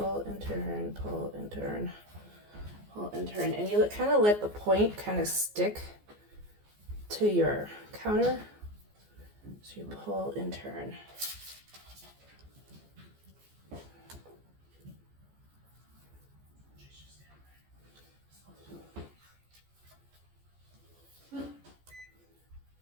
and turn, pull and turn, pull and turn. And you kind of let the point kind of stick to your counter. So you pull and turn.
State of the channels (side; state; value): left; late; 14 ms